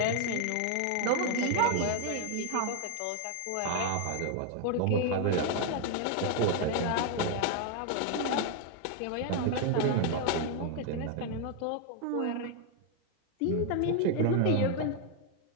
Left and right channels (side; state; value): both; different; correlation 0.00